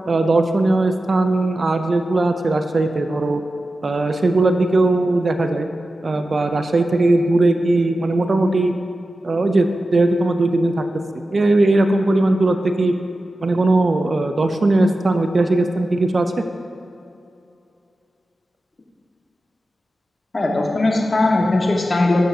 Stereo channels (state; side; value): normal; both; correlation 0.93